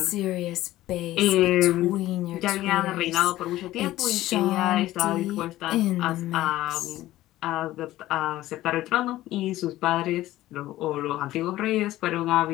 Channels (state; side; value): quieter; right; 15.5 dB